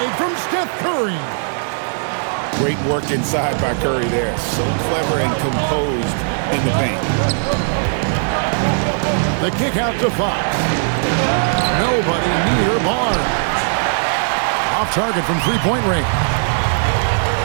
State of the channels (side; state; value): left; silent; 67 dB below the other